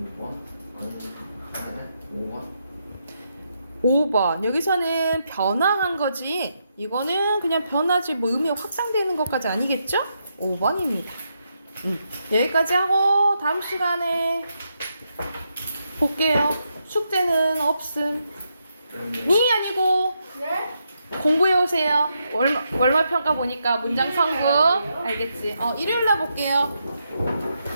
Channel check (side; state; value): both; inverted; correlation -0.81